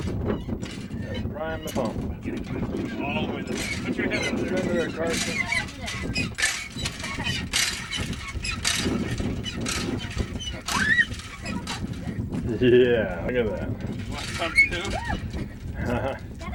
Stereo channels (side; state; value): both; identical; correlation 1.00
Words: Prime the pump. All the way there. Put your head under there. Under there, Carson. Yeah, look at that. Want some too? That